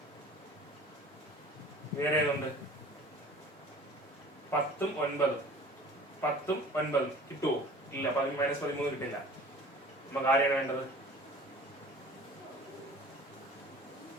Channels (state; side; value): normal; both; correlation 0.45